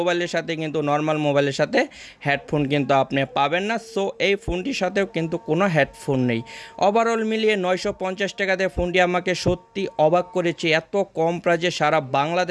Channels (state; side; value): identical; both; correlation 1.00